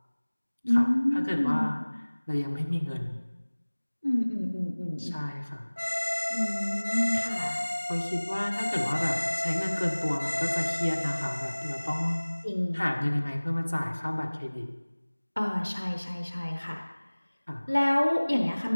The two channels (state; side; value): inverted; both; correlation -1.00